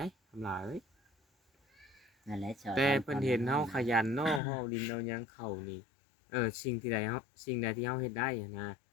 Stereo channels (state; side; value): drops out; right; at 4.4 s